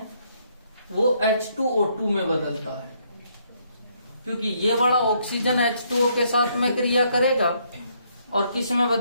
वो H2O2 में बदलता है, क्योंकि ये वाला ऑक्सीजन H2O के साथ में क्रिया करेगा और किस में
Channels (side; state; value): both; inverted; correlation -0.71